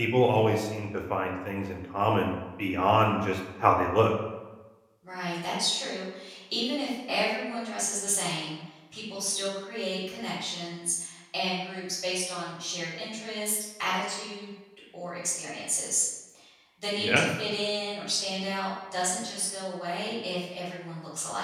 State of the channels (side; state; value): both; identical; correlation 1.00